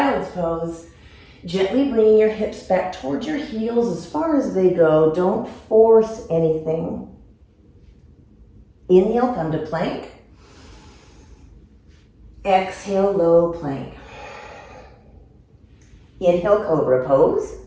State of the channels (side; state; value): both; identical; correlation 1.00